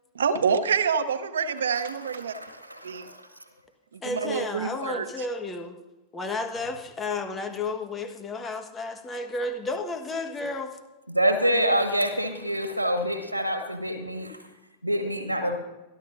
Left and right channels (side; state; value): both; inverted; correlation -0.50